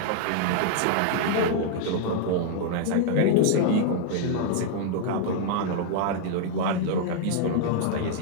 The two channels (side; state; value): both; different; correlation 0.00